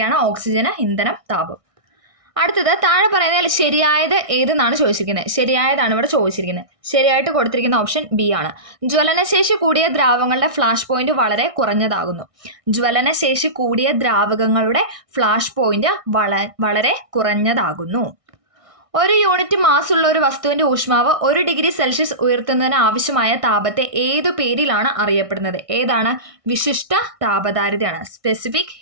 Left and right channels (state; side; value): late; left; 1.6 ms